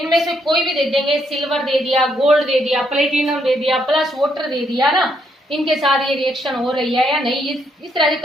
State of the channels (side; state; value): both; normal; correlation 0.74